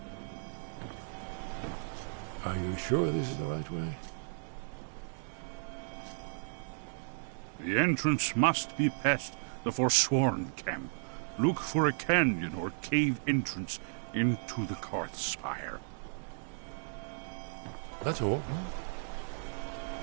Are you sure this is the right way? The entrance must be past the Forsworn camp. Look for a canyon or cave entrance into the Karth Spire. That's all.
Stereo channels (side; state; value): left; silent; digital silence